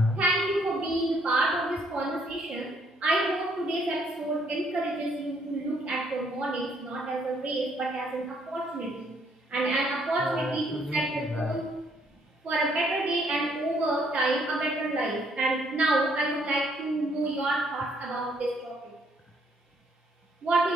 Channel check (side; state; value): both; normal; correlation 0.68